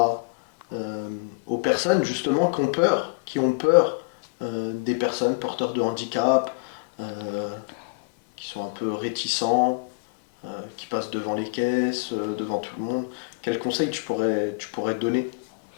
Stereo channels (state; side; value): quieter; right; 30.4 dB